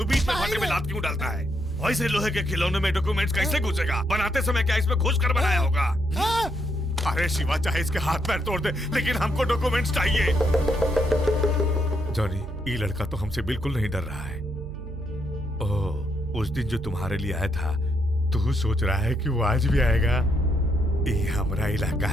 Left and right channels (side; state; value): right; noise; hum, 10 dB below the sound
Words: बीच में भाटे में लात क्यों डालता है? वैसे लोहे के खिलौने में डॉक्यूमेंट्स कैसे घुसेगा? बनाते समय क्या इसमें घुस कर बनाया होगा? अरे शिवा, चाहे इसके हाथ पैर तोड़ दे, लेकिन हमको डॉक्यूमेंट्स चाहिए। जॉनी, ये लड़का तो हमसे बिल्कुल नहीं डर रहा है। ओह, उस दिन जो तुम्हारे लिए आया था, तू सोच रहा है कि वो आज भी आएगा? ये हमारा इलाका